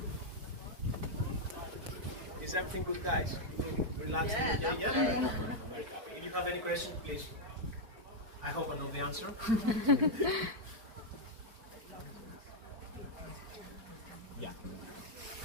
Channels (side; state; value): left; late; 4.6 ms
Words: Is everything good, guys? Relaxing, okay? Yeah? I'm very happy. If you have any questions, please. I hope I know the answer. Yeah.